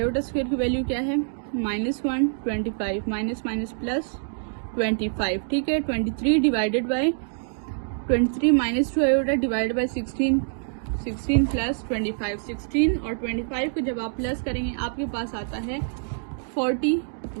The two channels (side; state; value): left; silent; digital silence